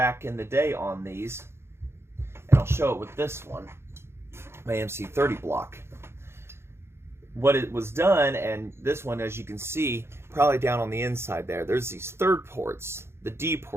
in the day on these, and I'll show it with this one, my MC30 block. What it was done, and this one, as you can see, probably down on the inside there, there's these third ports. The D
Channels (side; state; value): left; late; 0.12 ms